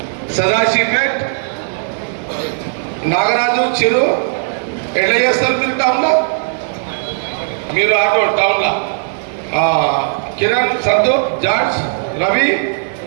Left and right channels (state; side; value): silent; left; digital silence